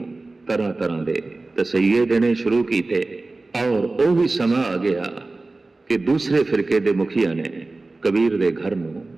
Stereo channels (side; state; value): left; quieter; 3.3 dB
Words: ਤਰ੍ਹਾਂ ਤਰ੍ਹਾਂ ਦੇ ਤਸਈਏ ਦੇਣੇ ਸ਼ੁਰੂ ਕੀਤੇ, ਔਰ ਉਹ ਵੀ ਸਮਾਂ ਆ ਗਿਆ ਕਿ ਦੂਸਰੇ ਫਿਰਕੇ ਦੇ ਮੁਖੀਆਂ ਨੇ ਕਬੀਰ ਦੇ ਘਰ ਨੂੰ